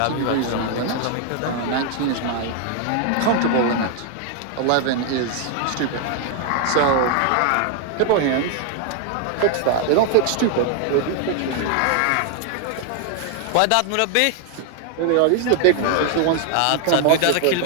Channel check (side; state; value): both; different; correlation 0.00